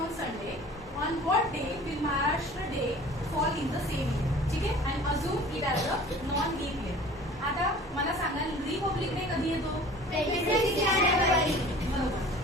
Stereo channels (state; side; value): normal; both; correlation 0.45